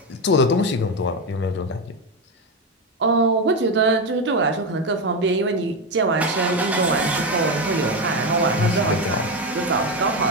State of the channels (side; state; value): both; normal; correlation 0.13